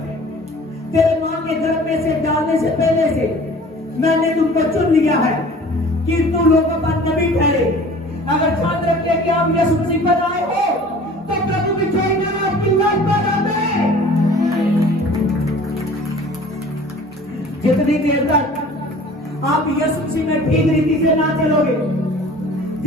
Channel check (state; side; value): normal; both; correlation 0.46